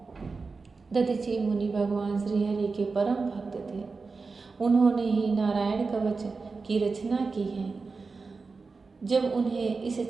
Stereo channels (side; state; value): left; quieter; 4.3 dB